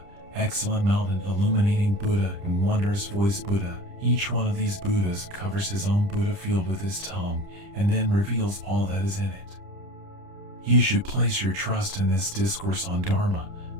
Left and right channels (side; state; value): left; late; 30 ms